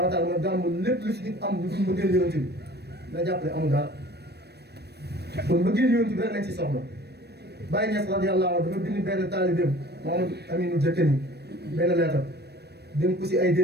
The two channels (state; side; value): late; left; 0.47 ms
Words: daal mooy gàmmu lépp lu si nit am lu dul bëggeel yonent bi na jàpp ne amul dara kon bëggeel yonent bi rek lañ si soxla Baye Niass radiyallahu anhu dafa bind benn taalibeem Mamadou Aminou Diakeni benn leetar dénk ko si ay